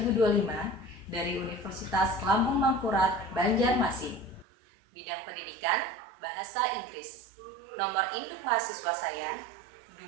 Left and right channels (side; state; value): left; drops out; at 4.5 s